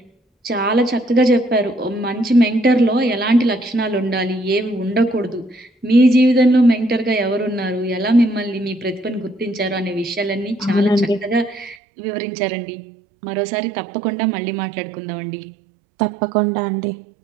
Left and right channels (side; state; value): left; drops out; at 11.8 s